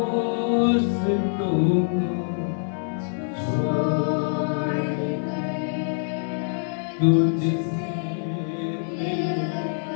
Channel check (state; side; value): silent; right; digital silence